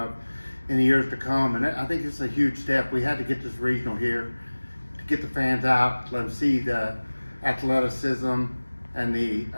in the years to come. And I think it's a huge step. We had to get this regional here to get the fans out, let them see the athleticism and the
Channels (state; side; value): inverted; both; correlation -1.00